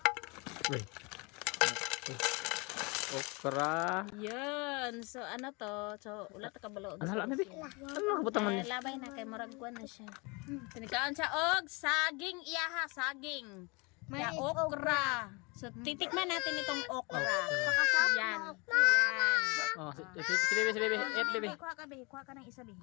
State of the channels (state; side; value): quieter; right; 28.7 dB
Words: Wait. Okra. Yan. So ano to? So ulat ka balo. Ano hala na bi? Ano kabutang man ni? Labay na kay murag kuan na siya. Tinikaon siya og saging iyaha, saging. Ya okra. So titikman natin itong okra. Yan. Oh, si baby. Eat baby. Kuha ka ng isa bi.